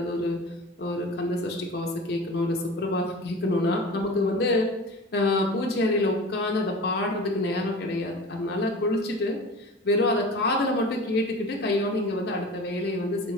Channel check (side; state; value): both; normal; correlation 0.36